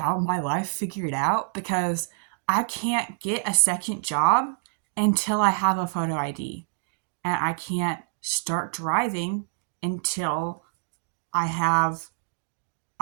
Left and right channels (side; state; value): left; silent; digital silence